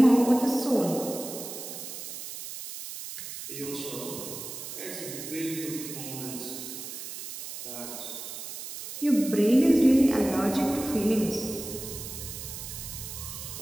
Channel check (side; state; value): right; noise; hiss, 9 dB below the sound